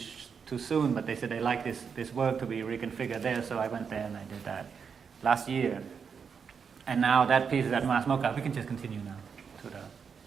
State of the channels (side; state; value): left; quieter; 6.3 dB